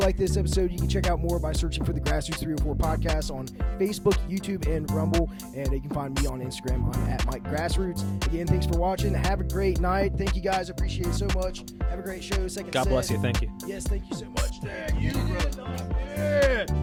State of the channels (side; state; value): both; identical; correlation 1.00